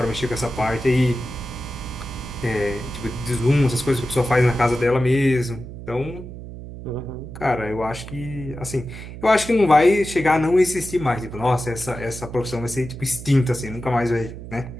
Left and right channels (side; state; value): right; noise; hum, 12 dB below the sound